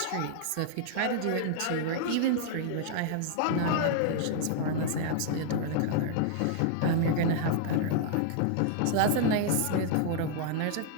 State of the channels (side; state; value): both; different; correlation 0.00